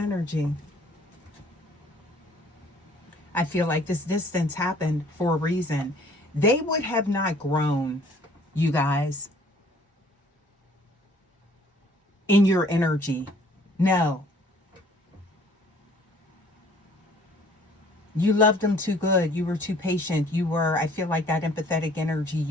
I feel like this distance happened for a reason. They would have not grown, you guys, in your energy. No. You loved them too good. You were too patient. You were, I feel like that empathetic energy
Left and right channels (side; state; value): both; normal; correlation 0.56